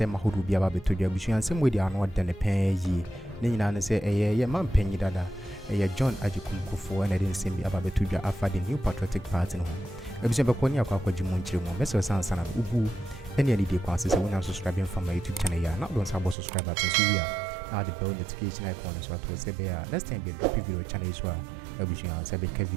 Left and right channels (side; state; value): left; drops out; at 16.4 s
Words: ahodo bia ba beto dua busu ensem we dia no de ne pen yi ne nyina ne say ye man panyi dada John Kuffour na de ensem bia ba beto dua afa the new patriotic party no episode be kwani akwa jimu nchire mo message sansa na ubu any any day kwa say when I'm subscribing from my YouTube channel ya na don't sabo subscribe button so we are now the bell notification icon so to say be next time be drop video channel so ebusu ya say be ka